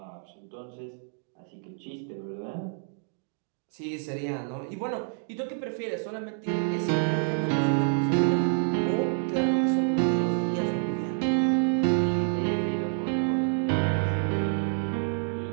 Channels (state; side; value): silent; left; digital silence